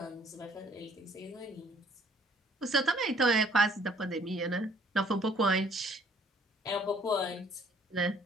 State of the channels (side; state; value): both; normal; correlation 0.60